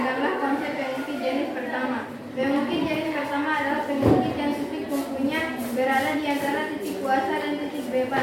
konsep pengungkit jenis pertama. Pengungkit jenis pertama adalah pengungkit yang titik tumpunya berada di antara titik kuasa dan titik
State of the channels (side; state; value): both; identical; correlation 1.00